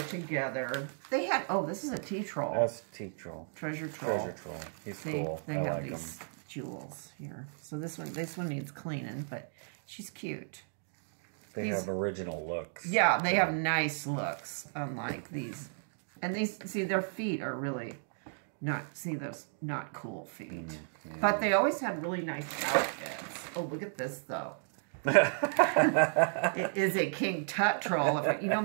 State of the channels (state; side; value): silent; left; digital silence